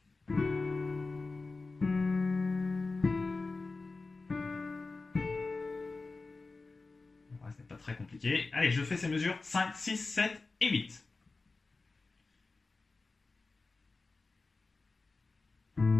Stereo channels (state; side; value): quieter; right; 3.7 dB